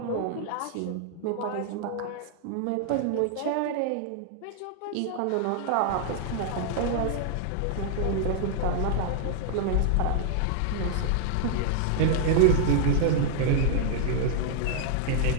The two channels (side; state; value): both; different; correlation -0.01